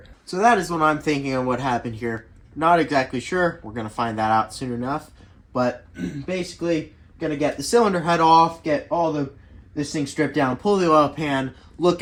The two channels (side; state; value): both; identical; correlation 1.00